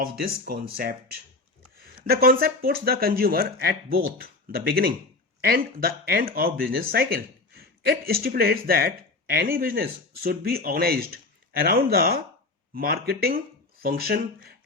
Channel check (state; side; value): quieter; right; 3.3 dB